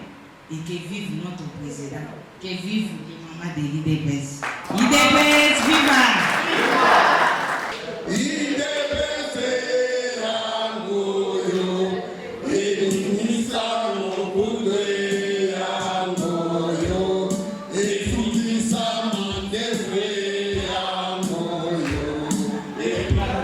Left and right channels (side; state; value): both; identical; correlation 1.00